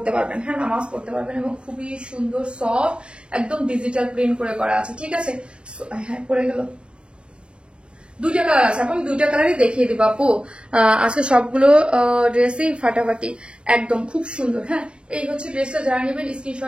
পারবেন, হ্যাঁ নামাজ পড়তে পারবেন, এবং খুবই সুন্দর সফট একদম ডিজিটাল প্রিন্ট করে করা আছে। ঠিক আছে, হ্যাঁ পড়ে গেল। দুইটা কালার আছে আপু, আমি দুইটা কালারই দেখিয়ে দিব আপু। আজকে সবগুলো ড্রেসই ফাটাফাটি একদম খুব সুন্দর। হ্যাঁ এই হচ্ছে ড্রেসটা, যারা নেবেন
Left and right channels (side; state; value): left; late; 0.053 ms